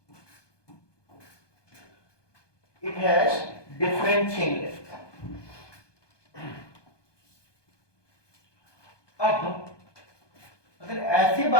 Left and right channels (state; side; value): late; right; 1.2 ms